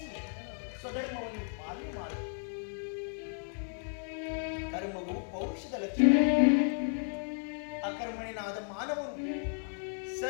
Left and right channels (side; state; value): right; silent; 55 dB below the other